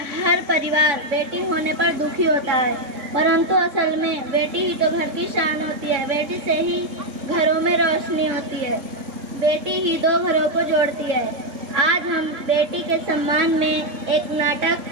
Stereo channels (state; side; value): late; left; 3.6 ms